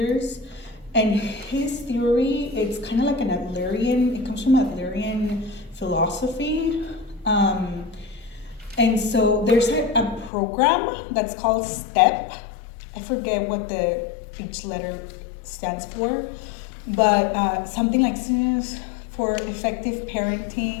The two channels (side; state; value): right; drops out; at 10.3 s